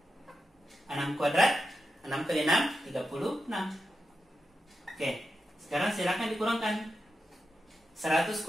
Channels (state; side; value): normal; both; correlation 0.89